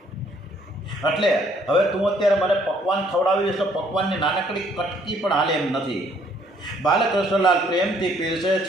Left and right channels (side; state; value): both; normal; correlation 0.64